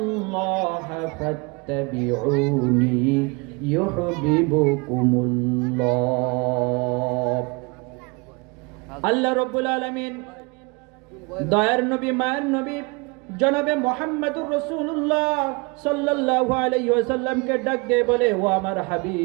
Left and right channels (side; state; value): left; quieter; 28.7 dB